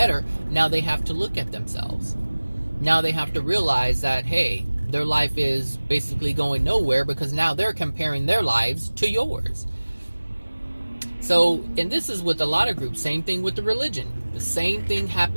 now they have to look at themselves. Now they have to realize that, hey, their life is basically going nowhere because now they're comparing their lives to yours. So, and this is with a lot of groups, same thing with the religion. The same thing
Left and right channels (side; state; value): both; inverted; correlation -1.00